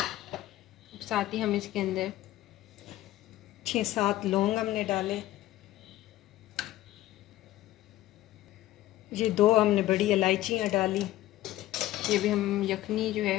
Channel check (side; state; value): right; quieter; 15.1 dB